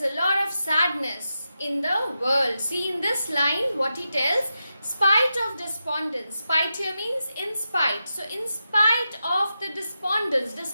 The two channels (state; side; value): inverted; both; correlation -0.89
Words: a lot of sadness in the world. See in this line what he tells, spite of despondence. Spite here means in spite. So in spite of the despondence